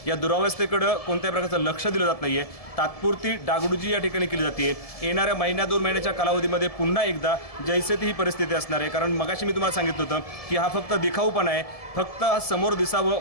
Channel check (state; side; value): late; right; 1.7 ms